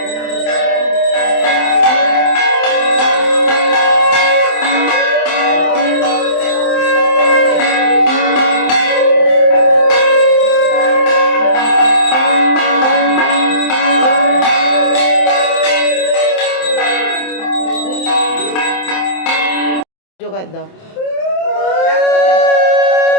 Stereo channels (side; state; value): right; late; 27 ms